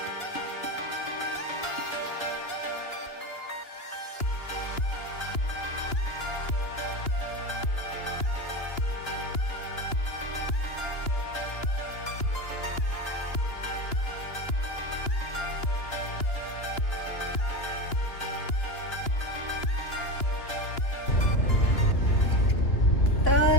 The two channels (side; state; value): right; late; 2.9 ms